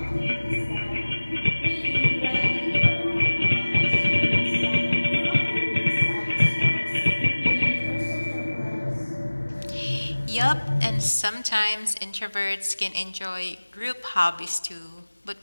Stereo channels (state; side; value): inverted; both; correlation -1.00